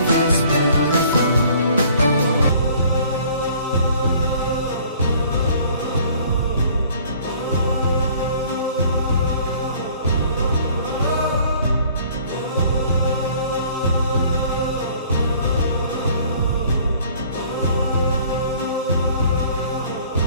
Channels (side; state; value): both; inverted; correlation -0.55